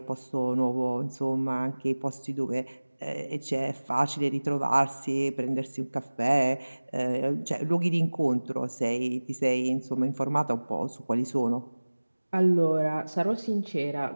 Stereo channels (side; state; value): both; inverted; correlation -1.00